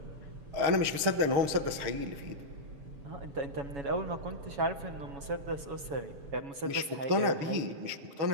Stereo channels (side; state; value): left; late; 6.5 ms